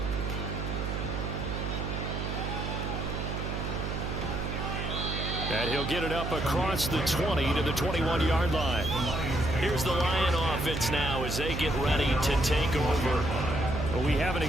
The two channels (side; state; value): right; noise; hum, 3 dB below the sound